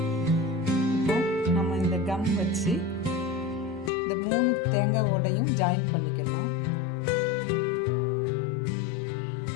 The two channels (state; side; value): drops out; right; at 3.9 s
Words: இப்போ நம்ம இந்த கம் வச்சு இந்த 3 தேங்காய் ஓடையும் ஜாயின் பண்ணிக்கலாம்.